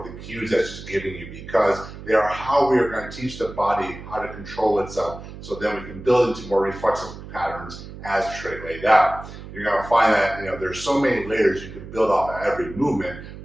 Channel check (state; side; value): noise; right; hum, 13 dB below the sound